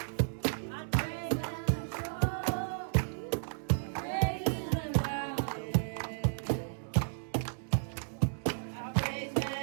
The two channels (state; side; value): silent; left; digital silence